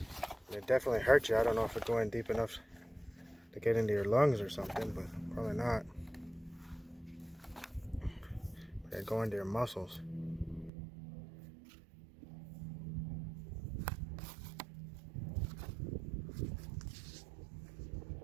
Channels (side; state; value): left; drops out; at 10.7 s